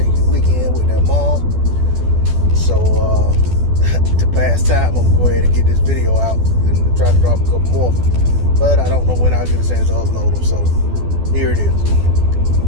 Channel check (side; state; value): left; late; 12 ms